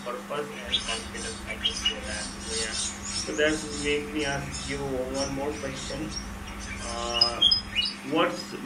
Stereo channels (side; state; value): both; identical; correlation 1.00